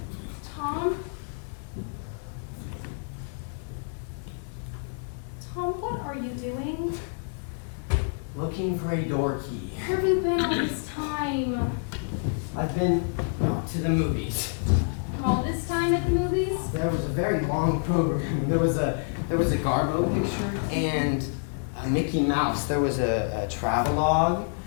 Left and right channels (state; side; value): silent; right; 60 dB below the other